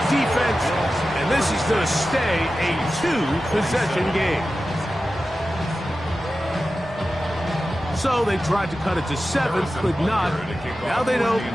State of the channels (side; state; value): both; normal; correlation 0.93